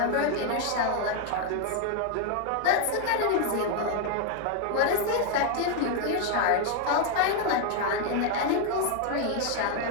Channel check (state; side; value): different; both; correlation 0.01